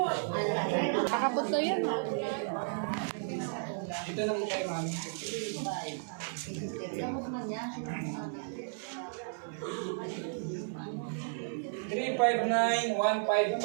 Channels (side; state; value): left; silent; 55 dB below the other